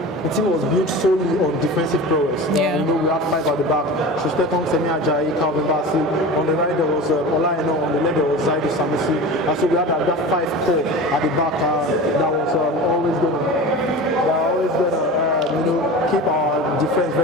the team was built solely on defensive prowess. You know, we had 5 at the back: Shusteton, Semi Ajayi, Calvin Bassey. On the right there was Ola Eno, on the left there was Zaidu Sanusi. And so we had that 5 core at the back that was always going to keep our defense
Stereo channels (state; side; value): normal; both; correlation 0.32